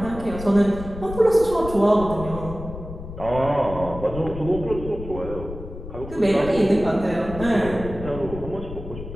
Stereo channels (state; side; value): noise; left; rumble, 11 dB below the sound